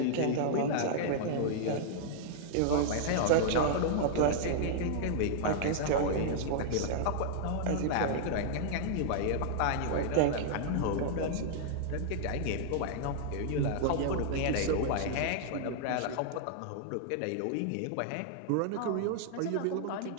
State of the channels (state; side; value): different; both; correlation -0.01